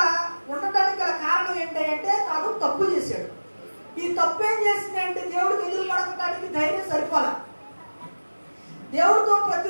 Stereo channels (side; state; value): both; inverted; correlation -1.00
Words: ఉండటానికి గల కారణం ఏంటంటే తాను తప్పు చేశాడు. ఈ తప్పు ఏం చేసిందంటే దేవుడికి ఎదురు పడకటానికి ధైర్యం సరిపోలా. దేవుడితో